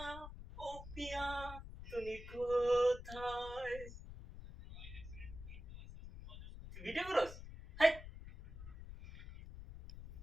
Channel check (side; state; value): left; noise; rumble, 12 dB below the sound